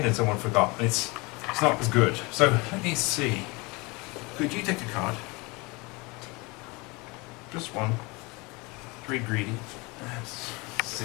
and someone forgot, and it's not as good. So let me see. Could you take a card? Just one. Very greedy. Let's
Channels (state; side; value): quieter; right; 26.0 dB